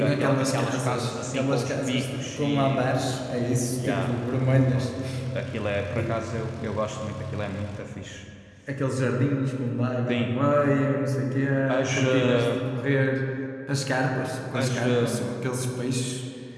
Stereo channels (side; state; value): both; identical; correlation 1.00